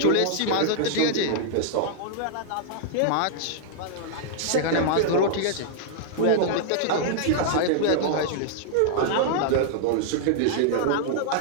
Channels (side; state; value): both; different; correlation -0.01